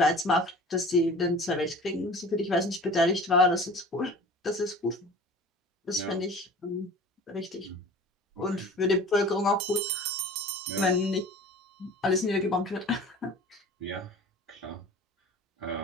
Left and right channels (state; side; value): normal; both; correlation 0.42